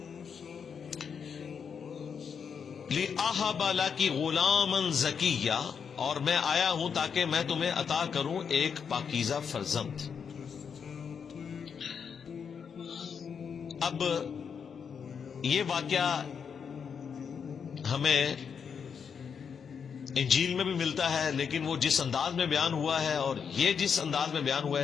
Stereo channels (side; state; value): right; quieter; 6.7 dB